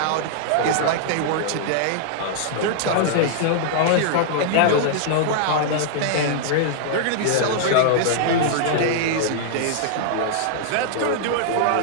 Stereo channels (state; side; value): different; both; correlation -0.01